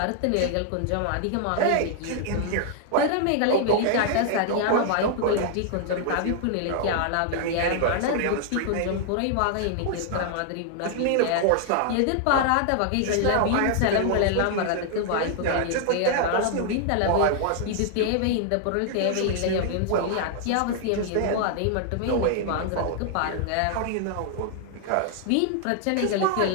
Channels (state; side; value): different; both; correlation 0.00